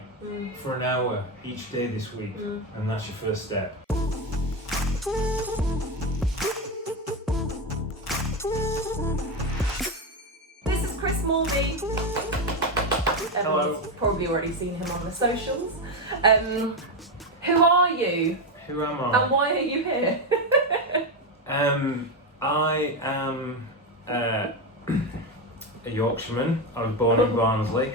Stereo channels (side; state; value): both; normal; correlation 0.11